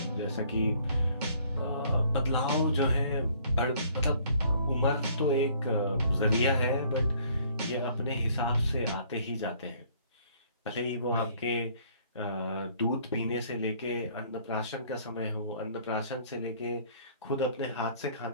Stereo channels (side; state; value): both; inverted; correlation -0.59